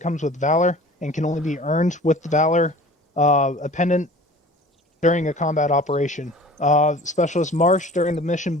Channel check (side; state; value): both; normal; correlation 0.44